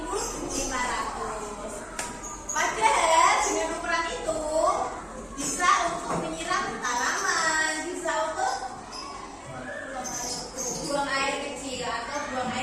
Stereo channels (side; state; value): both; identical; correlation 1.00